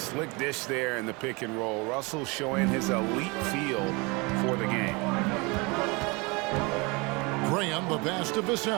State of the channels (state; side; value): quieter; left; 27.5 dB